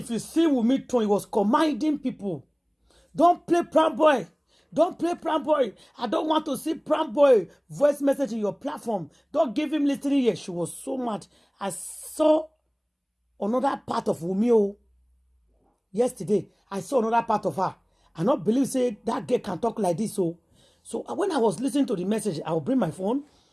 you see Wunmi tone, he was commanding people, don't play prank boy. Don't play prank boy. I don't want to see prank boy voice message in your platform. Don't give him listening here. She was so mad. I saw another part of Wunmi yesterday. I saw another part of her. I not believe say that girl can talk like this. So when I was listening to the message, I will bring my phone.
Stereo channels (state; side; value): identical; both; correlation 1.00